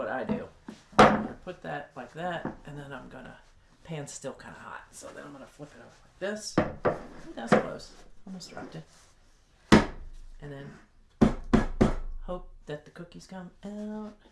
I do. I'm going to put that like that, and then I'm going to, pan's still kind of hot, so then I'm going to flip it over like this. Ooh, that was close. Almost dropped it. And then hope that the cookies come out.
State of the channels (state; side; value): identical; both; correlation 1.00